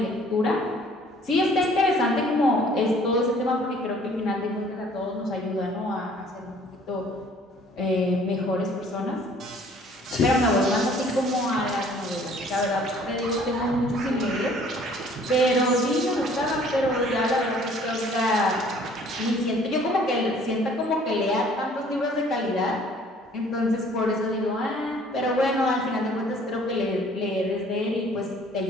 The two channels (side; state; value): both; normal; correlation 0.56